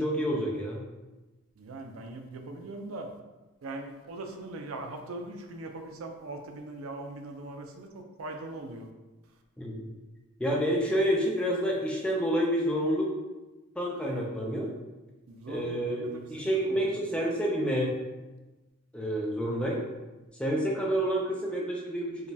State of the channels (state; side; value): normal; both; correlation 0.53